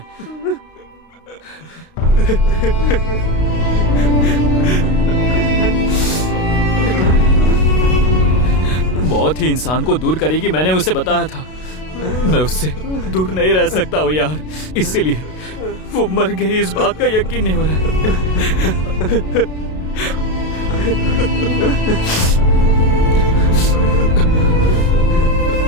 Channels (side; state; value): right; late; 32 ms